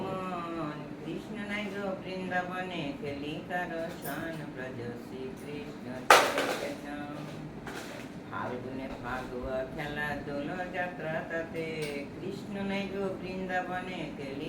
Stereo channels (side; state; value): both; identical; correlation 1.00